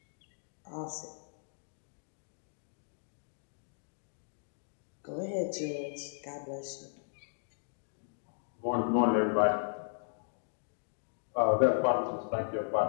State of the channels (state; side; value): silent; right; digital silence